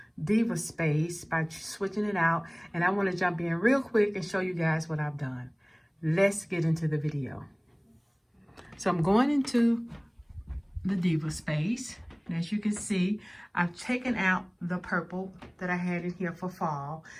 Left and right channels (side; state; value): both; identical; correlation 1.00